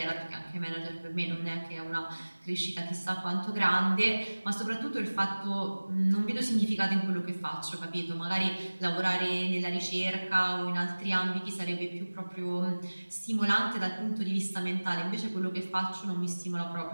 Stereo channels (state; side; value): inverted; both; correlation -1.00